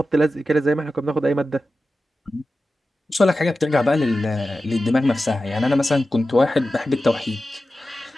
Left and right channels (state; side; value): normal; both; correlation 0.93